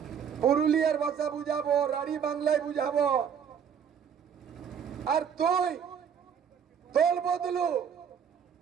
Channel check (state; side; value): quieter; left; 7.7 dB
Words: পুরুলিয়ার ভাষা বুঝাবো, রাঢ়ী বাংলায় বুঝাবো। আর তুই দল বদলু,